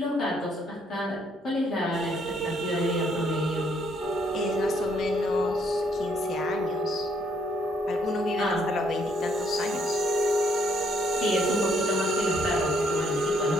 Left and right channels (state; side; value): normal; both; correlation 0.69